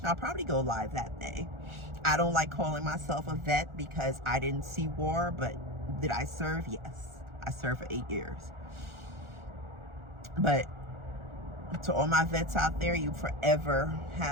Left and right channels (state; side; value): late; left; 1.4 ms